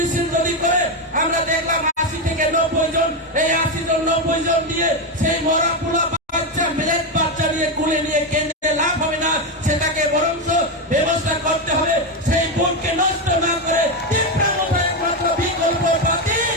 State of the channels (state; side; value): normal; both; correlation 0.09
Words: যদি করে আমরা দেখলাম 80 থেকে 90 জন, এই 80 জন 90 জন দিয়ে সেই মরা পোলা বাচ্চা মিলেট বাচ্চা নিয়ে কুলে নিয়ে কেন্দ্রে লাভ হবে না, সেটাকে বরঞ্চ ব্যবস্থা করতে হবে। সেই ভোটকে নষ্ট না করে তীব্র একমাত্র বিকল্প পার্টি